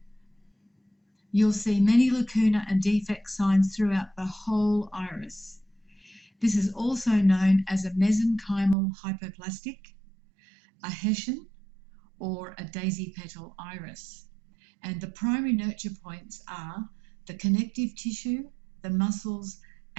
You'll see many lacuna and defect signs throughout the whole iris. This is also known as a mesenchymal hypoplastic, a Hessian, or a daisy petal iris. And the primary nurture points are the connective tissue, the muscles,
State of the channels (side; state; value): left; drops out; at 8.8 s